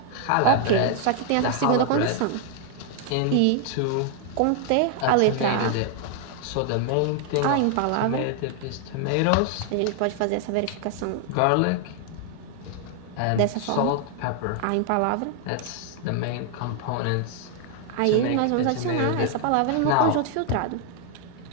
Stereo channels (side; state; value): both; different; correlation 0.00